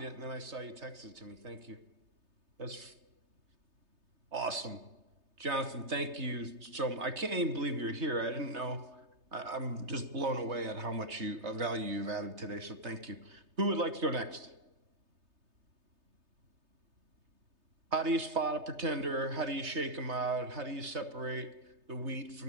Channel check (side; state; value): left; late; 3.3 ms